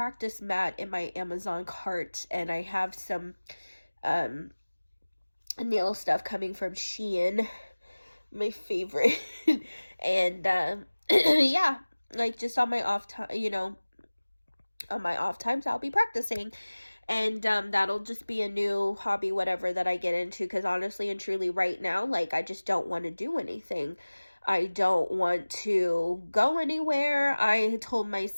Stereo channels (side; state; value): both; inverted; correlation -1.00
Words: mat in my Amazon cart, and I have some nail stuff coming from Shein, my favorite. And yeah, like, just on my off time, you know, on my off times, I'll be practicing. And that'll just be a new hobby, whatever, that I get into, because honestly and truly right now, like, I just don't want to do anything. I don't want to go anywhere. I told